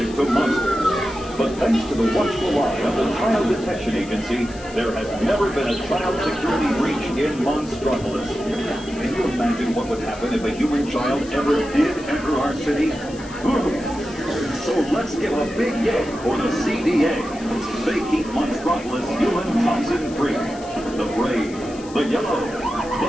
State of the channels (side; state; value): left; noise; hiss, 19 dB below the sound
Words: attracted to monsters. But thanks to the watchful eye of the Child Detection Agency, there has never been a child security breach in Monstropolis. Can you imagine what would happen if a human child ever did enter our city? So let's give a big yay for the CDA. They keep Monstropolis human toxin free. The brave, the yellow,